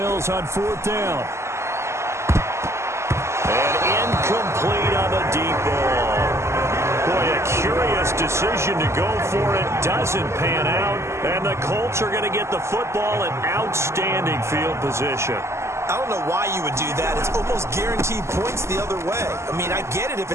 on 4th down. decision to go for it doesn't pan out, and the Colts are going to get the football in outstanding field position. I don't know why you would do that. It's almost guaranteed points the other way. I mean, I get it if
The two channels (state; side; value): late; left; 0.13 ms